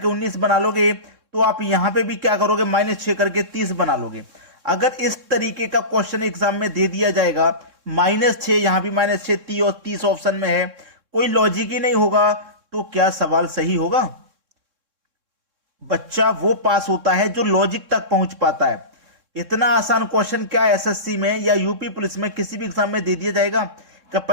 19 बना लोगे तो आप यहां पे भी क्या करोगे, -6 करके 30 बना लोगे। अगर इस तरीके का क्वेश्चन एग्जाम में दे दिया जाएगा, -6 यहां भी -6 30 और 30 ऑप्शन में है, कोई लॉजिक ही नहीं होगा, तो क्या सवाल सही होगा? बच्चा वो पास होता है जो लॉजिक तक पहुंच पाता है। इतना आसान क्वेश्चन क्या एसएससी में या यूपी पुलिस में किसी भी एग्जाम में दे दिया जाएगा कि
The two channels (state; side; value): late; left; 3.6 ms